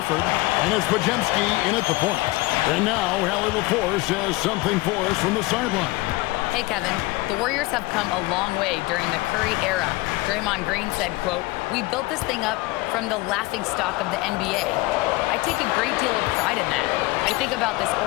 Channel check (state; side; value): quieter; right; 21.5 dB